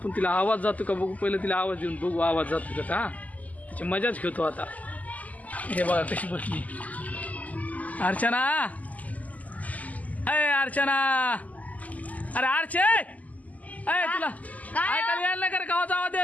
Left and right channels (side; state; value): right; late; 0.076 ms